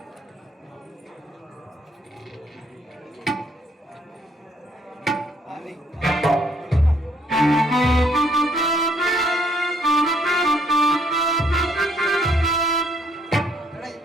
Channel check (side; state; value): both; normal; correlation 0.68